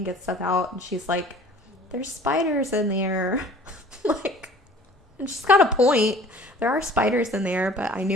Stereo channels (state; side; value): normal; both; correlation 0.49